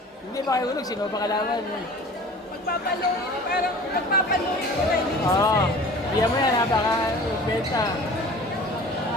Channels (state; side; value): normal; both; correlation 0.43